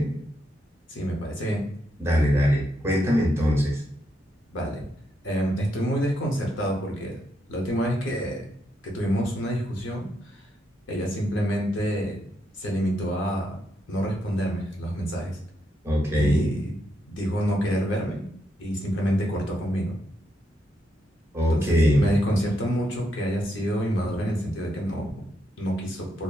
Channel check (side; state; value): both; normal; correlation 0.80